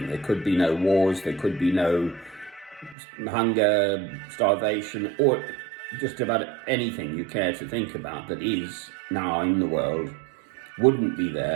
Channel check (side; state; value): left; drops out; at 3.0 s